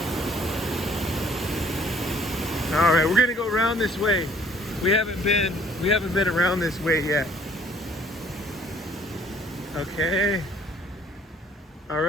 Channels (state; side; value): normal; both; correlation 0.59